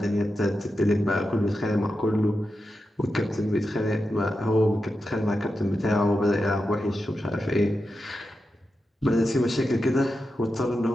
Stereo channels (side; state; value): both; normal; correlation 0.89